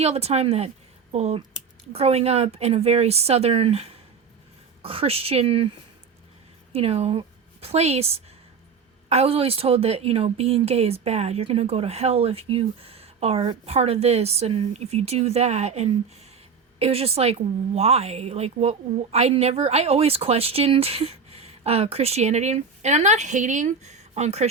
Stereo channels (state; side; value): quieter; left; 5.7 dB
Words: all the time that, well, growing up in a very southern Christian, you know, place, I was always told that, you know, being gay is bad. You're gonna go to hell if you are part of this and if you do that. And it was just like, why? Like, what? I always questioned Christianity. And I'm not hating on